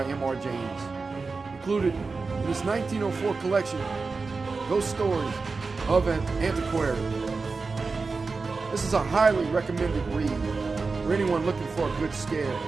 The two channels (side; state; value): left; quieter; 4.2 dB